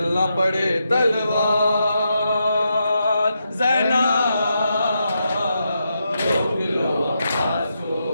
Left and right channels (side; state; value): both; inverted; correlation -0.84